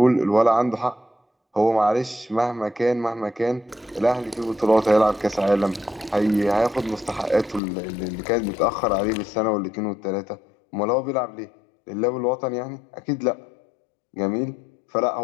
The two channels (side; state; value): right; drops out; at 7.6 s